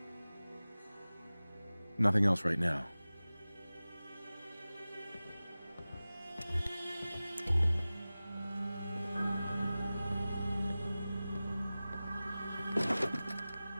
Nothing else right now.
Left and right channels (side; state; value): both; inverted; correlation -0.97